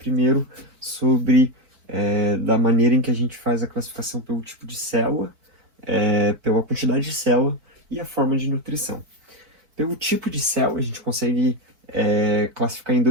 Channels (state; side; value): late; left; 4.4 ms